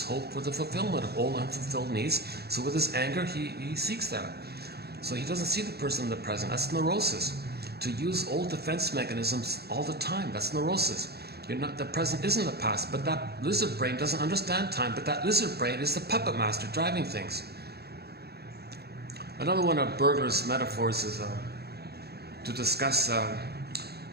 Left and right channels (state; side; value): late; left; 0.47 ms